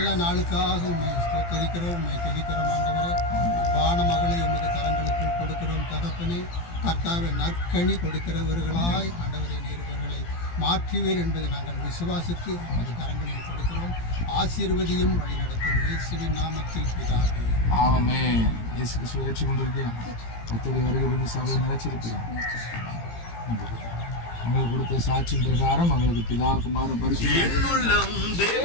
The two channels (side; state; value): right; late; 17 ms